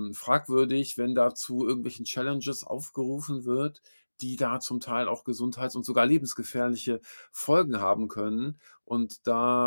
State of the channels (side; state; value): both; inverted; correlation -1.00